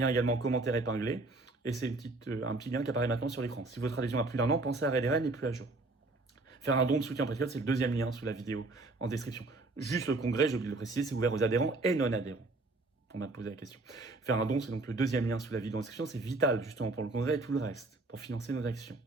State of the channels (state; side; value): quieter; left; 3.2 dB